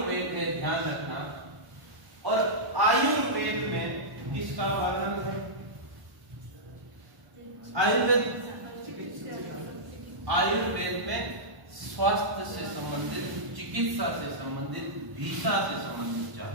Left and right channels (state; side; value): late; left; 1.1 ms